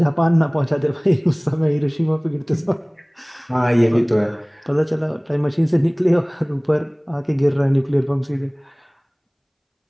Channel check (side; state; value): both; identical; correlation 1.00